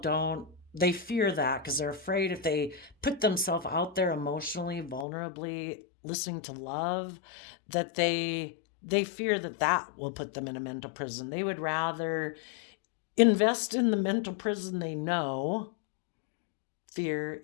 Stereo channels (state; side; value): drops out; right; at 5.1 s